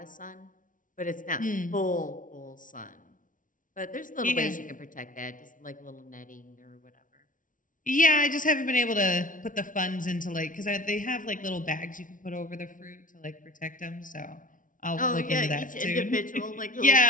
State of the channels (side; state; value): right; late; 0.38 ms